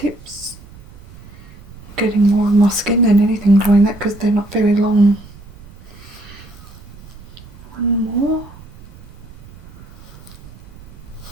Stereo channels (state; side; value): noise; right; rumble, 20 dB below the sound